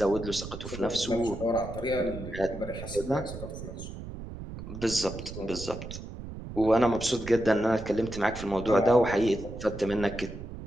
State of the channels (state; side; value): noise; right; rumble, 10 dB below the sound